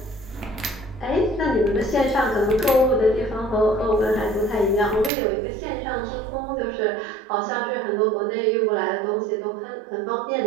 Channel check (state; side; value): drops out; left; at 5.1 s